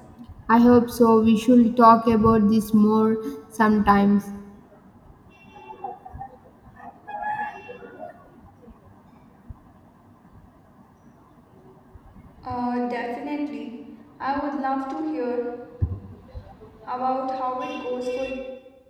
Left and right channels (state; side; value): identical; both; correlation 1.00